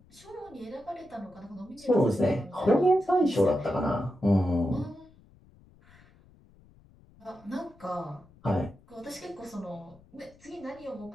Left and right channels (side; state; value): left; noise; rumble, 27 dB below the sound